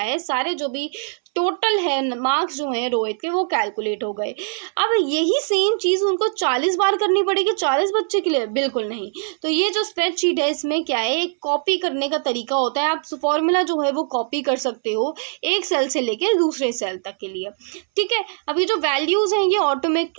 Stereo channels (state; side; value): silent; left; 65 dB below the other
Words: सारे जो भी टोटल है मार्क्स जो है रोहित के वो कैलकुलेट हो गए। अब यही सेम चीज़ उनको 40 बार करनी पड़ेगी 40 बच्चे के लिए, बिल्कुल नहीं। तो ये जो स्प्रेडशीट है इसमें क्या है, एक कॉपी करने का तरीका होता है। आप फॉर्मूला जो है वो कॉपी कर सकते हो एक सेल से लेके दूसरे सेल तक के लिए। ठीक है, अब ये जो वैल्यूज़ हैं ये